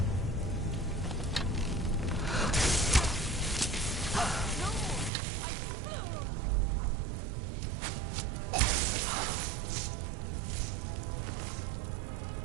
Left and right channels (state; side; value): drops out; left; at 5.1 s